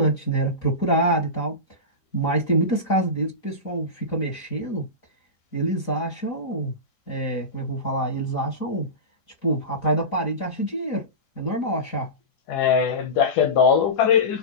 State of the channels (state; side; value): late; right; 4.0 ms